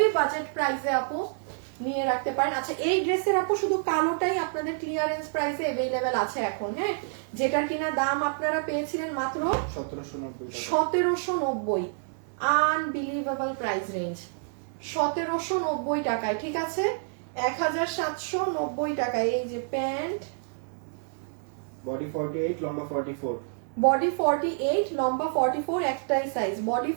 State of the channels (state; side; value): silent; left; digital silence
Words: বাজেট প্রাইসে আপু নিয়ে রাখতে পারেন। আচ্ছা, এই ড্রেসের আপু শুধু কালোটাই আপনাদের ক্লিয়ারেন্স প্রাইসে अवेलेबल আছে এখন। হ্যাঁ, যেটার কিনা দাম আপনারা পেয়েছিলেন মাত্র 1790। আনবিলিভেবল প্রাইস রেঞ্জ, 1790 টাকায়, ঠিক আছে? 1790 টাকায়। এই যে প্যান্ট, বডি 48 লম্বা 44 বডি 48 লম্বা 44 একটাই সাইজ, বডি